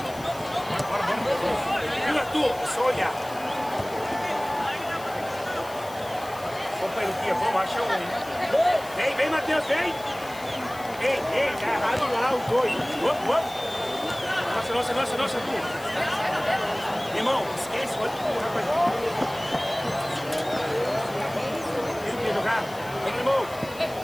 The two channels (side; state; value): left; noise; hiss, 19 dB below the sound